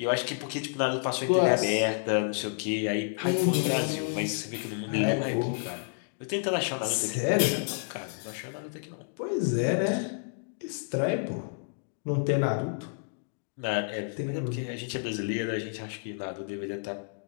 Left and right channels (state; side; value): silent; right; digital silence